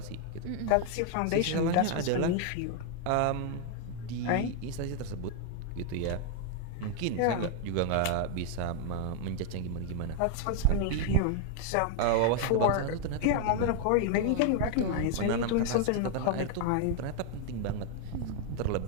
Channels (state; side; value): different; both; correlation 0.00